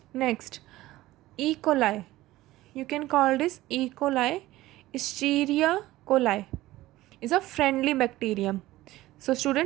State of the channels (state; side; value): quieter; left; 16.9 dB